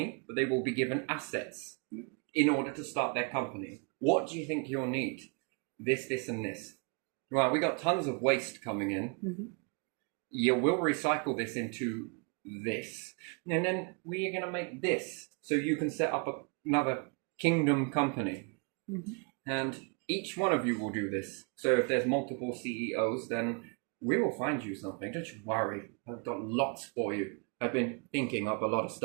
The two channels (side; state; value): left; quieter; 35.1 dB